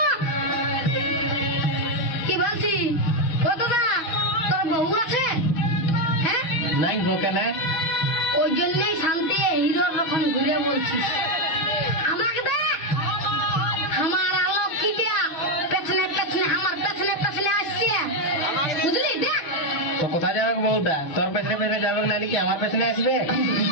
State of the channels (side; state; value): right; late; 6.1 ms